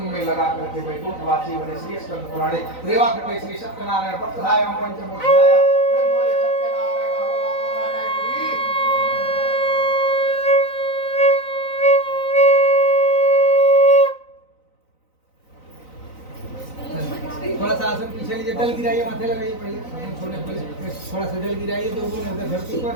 में लगा करके वैकुंठवासी बने। श्री स्कंद पुराणे रेवा कटे श्री सत्यनारायण पक्षायाम पंचमोध्याय। थोड़ा सा आसन पीछे लीजिए, जल गिराइए, माथे लगाइए, पहले छोड़ने पहले थोड़ा सा जल गिराइए, जो उधर धरती पर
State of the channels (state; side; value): late; right; 3.9 ms